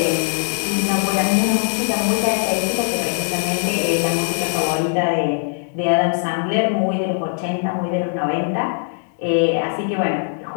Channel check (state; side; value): silent; right; 64 dB below the other